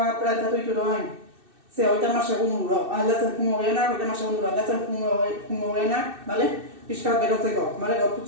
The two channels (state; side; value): late; left; 2.6 ms